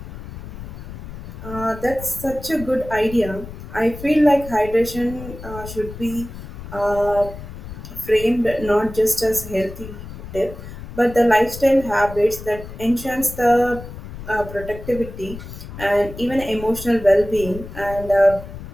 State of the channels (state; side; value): noise; left; rumble, 12 dB below the sound